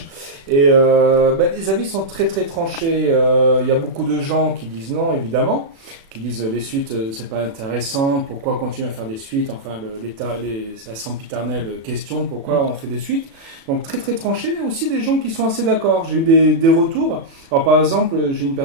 Et les avis sont très très tranchés. Il y a beaucoup de gens qui disent non, évidemment. Qui disent les suites, c'est pas intéressant. Pourquoi continuer à faire des suites ? Enfin, la sempiternelle question, pourquoi on fait des suites ? Donc très très tranché, mais aussi des gens qui sont assez d'accord. J'ai eu des retours. Alors par exemple, j'ai une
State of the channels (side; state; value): left; late; 36 ms